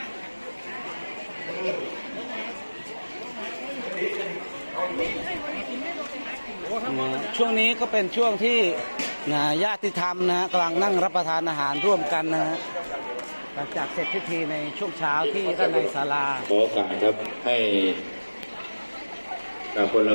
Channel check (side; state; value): both; inverted; correlation -1.00